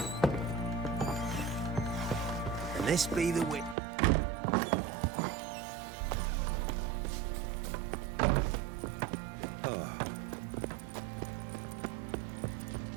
This be the way.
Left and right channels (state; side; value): drops out; left; at 3.8 s